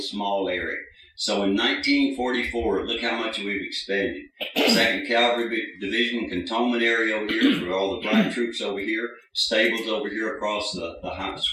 small area. So in 1944, look how much we've expanded. 2nd Cavalry Division cantonment area over here for all the black troops over here. Stables over here across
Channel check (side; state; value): both; identical; correlation 1.00